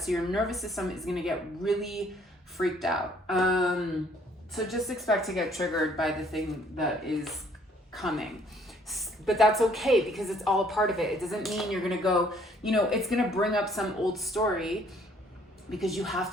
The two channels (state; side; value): normal; both; correlation 0.62